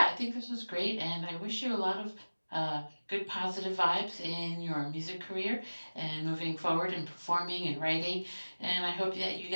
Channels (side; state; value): both; inverted; correlation -1.00